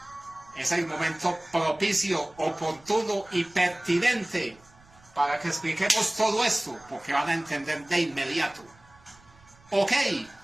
es el momento propicio, oportuno y pertinente para que expliquemos todo esto, porque van a entender de inmediato. Ok,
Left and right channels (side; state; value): right; noise; rumble, 27 dB below the sound